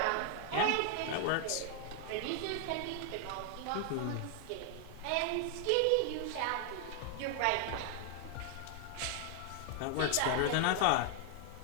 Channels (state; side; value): different; both; correlation 0.00